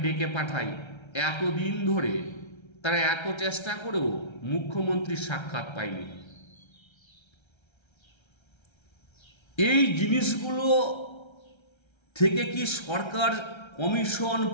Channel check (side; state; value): right; late; 1.3 ms